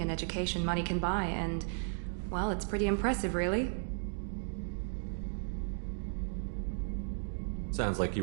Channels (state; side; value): silent; left; digital silence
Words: and education money can buy, and, well, it's pretty impressive, really. Sounds like you